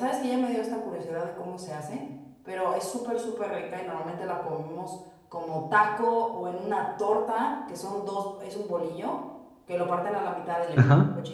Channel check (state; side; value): identical; both; correlation 1.00